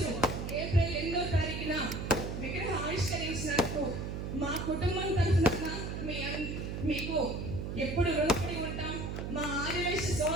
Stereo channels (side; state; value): right; noise; hum, 4 dB below the sound